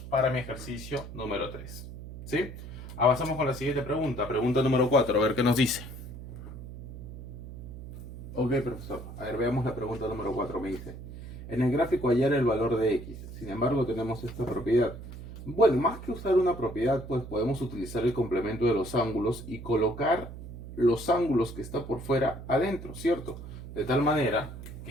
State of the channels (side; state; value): right; noise; hum, 12 dB below the sound